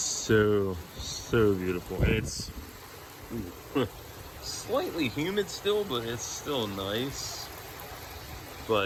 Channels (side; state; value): both; identical; correlation 1.00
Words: beautiful. It's slightly humid still, but it's still nice.